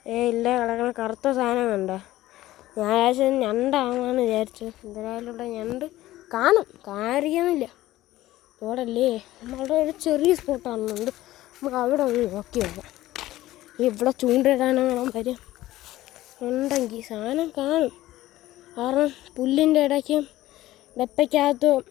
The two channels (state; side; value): quieter; right; 15.8 dB